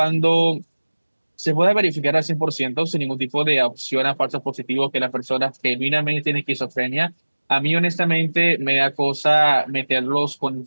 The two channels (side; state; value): both; inverted; correlation -1.00